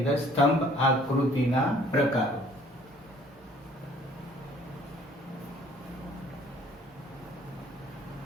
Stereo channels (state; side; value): normal; both; correlation 0.56